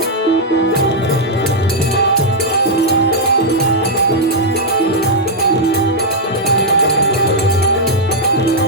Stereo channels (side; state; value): both; normal; correlation -0.05